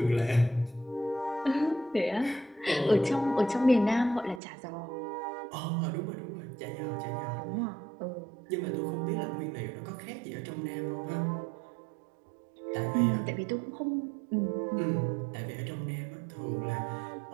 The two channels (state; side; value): drops out; left; at 4.4 s